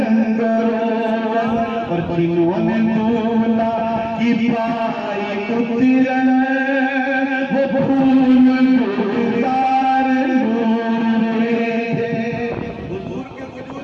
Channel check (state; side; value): identical; both; correlation 1.00